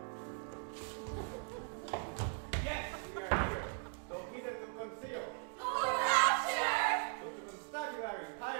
Yes, we are here, though hidden to conceal. Oh, rapture! So to constabulary,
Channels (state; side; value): silent; left; 52 dB below the other